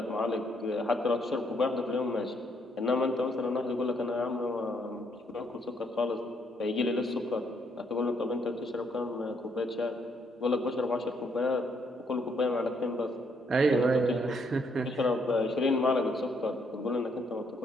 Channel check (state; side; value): normal; both; correlation 0.71